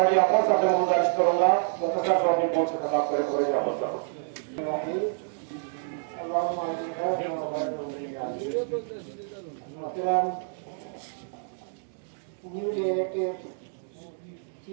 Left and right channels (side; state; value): left; silent; digital silence